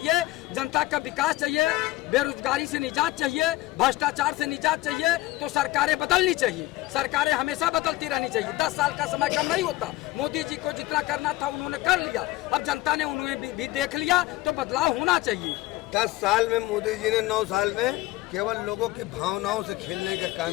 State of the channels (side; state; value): right; quieter; 18.1 dB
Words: जनता का विकास चाहिए, बेरोजगारी से निजात चाहिए, भ्रष्टाचार से निजात चाहिए, तो सरकारें बदलनी चाहिए। सरकारें हमेशा बदलती रहनी चाहिए। 10 साल का समय कम नहीं होता। मोदी जी को जितना करना था उन्होंने कर लिया, अब जनता ने उन्हें भी देख लिया, तो बदलाव होना चाहिए। 10 साल में मोदी जी ने 9 साल में केवल लोगों की भावनाओं से खेलने का काम